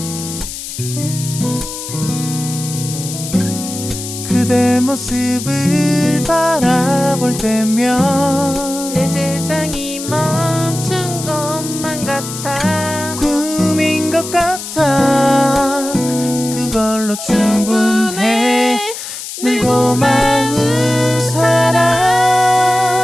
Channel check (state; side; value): noise; left; hiss, 9 dB below the sound